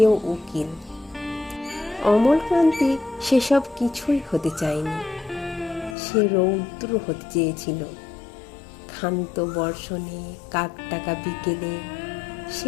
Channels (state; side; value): drops out; right; at 6.0 s